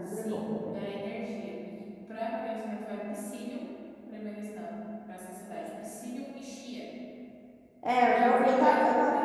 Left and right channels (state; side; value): identical; both; correlation 1.00